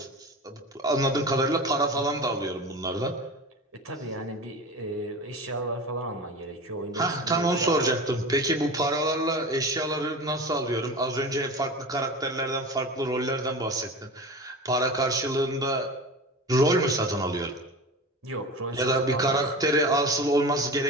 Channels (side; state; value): both; normal; correlation 0.32